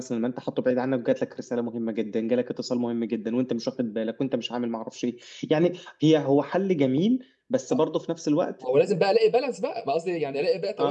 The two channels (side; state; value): both; identical; correlation 1.00